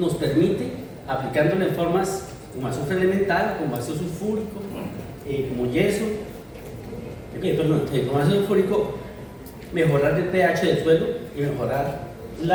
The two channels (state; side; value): identical; both; correlation 1.00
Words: permite, aplicándolo en formas como azufre elemental, como ácido sulfúrico, como yeso, como ácido sulfúrico, mejorar el pH del suelo y mejorar